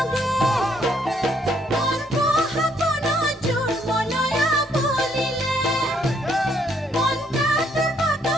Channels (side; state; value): both; normal; correlation 0.69